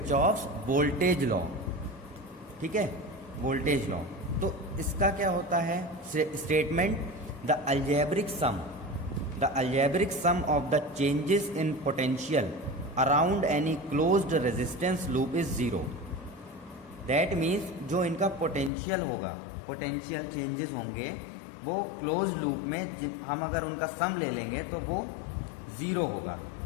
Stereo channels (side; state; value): right; drops out; at 18.7 s